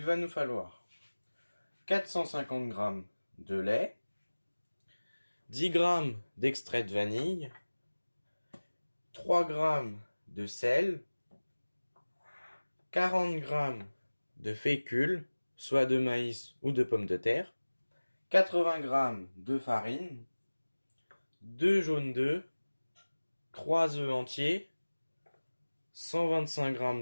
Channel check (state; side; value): inverted; both; correlation -1.00